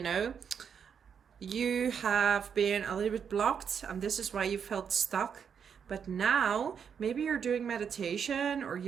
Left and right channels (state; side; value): quieter; left; 7.2 dB